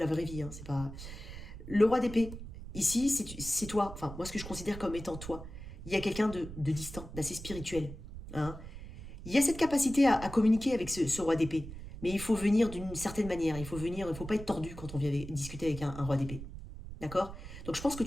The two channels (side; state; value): right; noise; rumble, 11 dB below the sound